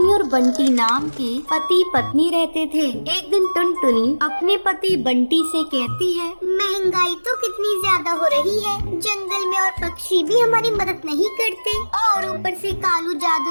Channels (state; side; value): inverted; both; correlation -1.00